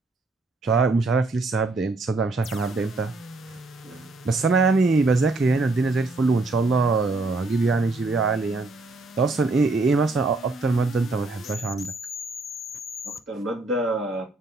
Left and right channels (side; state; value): left; quieter; 3.3 dB